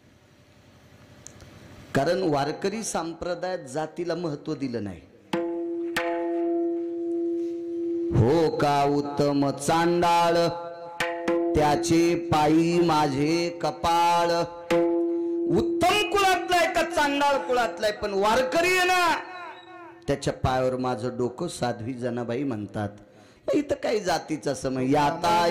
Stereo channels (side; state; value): both; identical; correlation 1.00